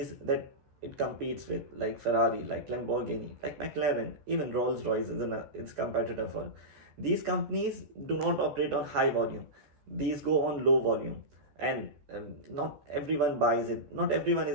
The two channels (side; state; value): left; late; 14 ms